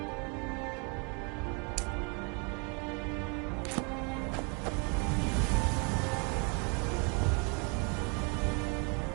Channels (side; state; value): left; quieter; 34.8 dB